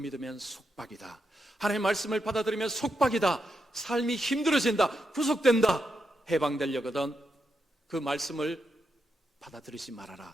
속박이다. 하나님 말씀을 받아들이면 속박이다. 삶이 힘들어진다. 구속된다. 해방되려거든 그 말씀을 받아들이지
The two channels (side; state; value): both; normal; correlation 0.84